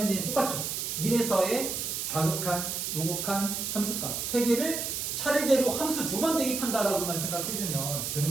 똑같죠? 1에서의 좌극한, 우극한 함수값 세 개를 차례대로 함수 두 번 대입한다라고만 생각해주면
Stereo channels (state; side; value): noise; right; hiss, 3 dB below the sound